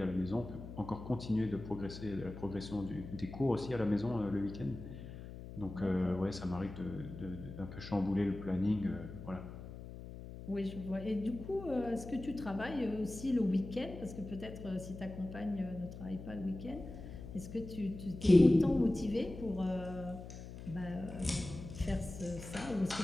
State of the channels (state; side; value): noise; left; hum, 11 dB below the sound